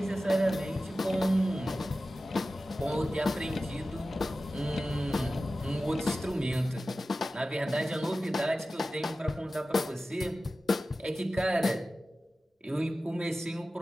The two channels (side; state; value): both; normal; correlation 0.95